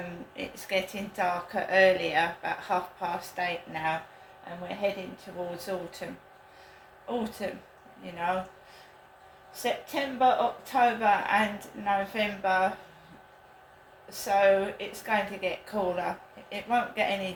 It's getting darker earlier, about 8:30 now, and we're heading towards autumn. Autumn, you know, September, October and November, so it's going to get cooler. It won't get any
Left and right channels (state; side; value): identical; both; correlation 1.00